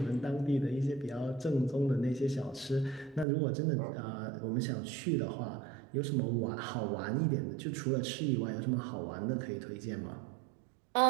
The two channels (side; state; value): left; drops out; at 3.2 s